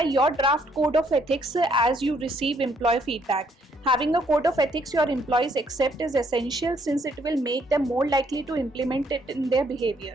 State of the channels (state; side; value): normal; both; correlation 0.69